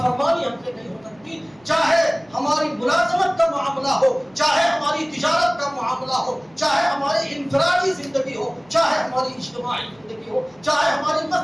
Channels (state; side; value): noise; right; hum, 30 dB below the sound